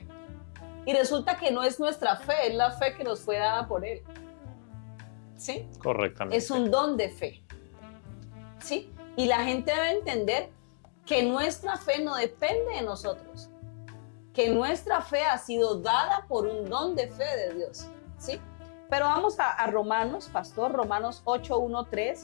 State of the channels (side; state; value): right; silent; 57 dB below the other